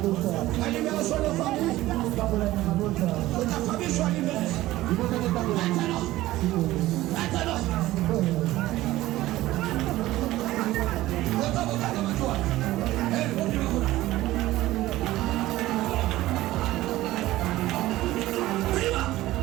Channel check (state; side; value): quieter; left; 16.4 dB